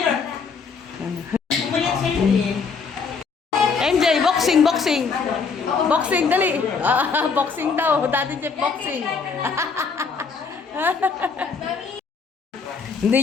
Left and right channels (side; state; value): right; quieter; 5.2 dB